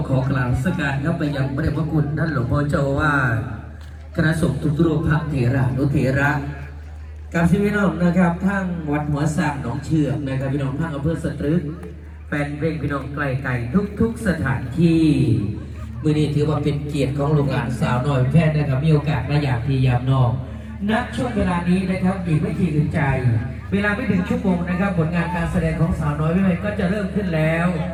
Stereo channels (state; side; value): identical; both; correlation 1.00